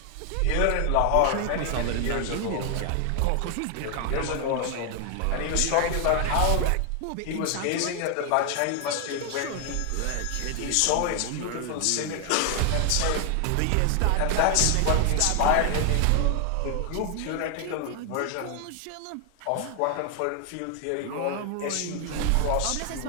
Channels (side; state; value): both; different; correlation 0.00